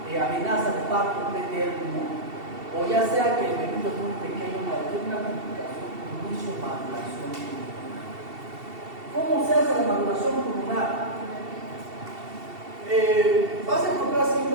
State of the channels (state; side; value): late; left; 2.7 ms